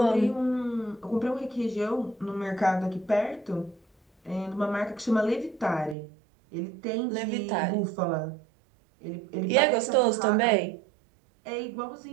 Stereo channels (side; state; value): left; drops out; at 6.0 s